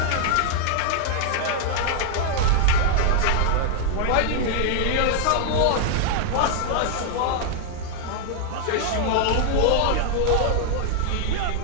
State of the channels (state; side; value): different; both; correlation -0.01